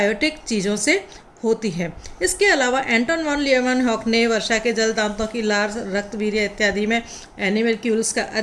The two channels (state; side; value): identical; both; correlation 1.00